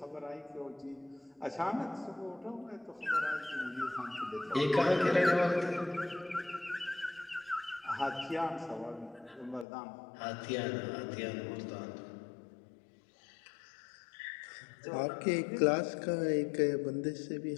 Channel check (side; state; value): right; drops out; at 9.7 s